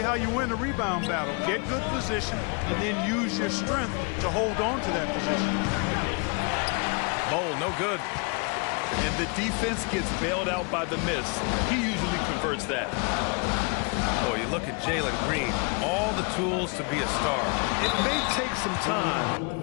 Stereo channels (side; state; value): right; quieter; 34.2 dB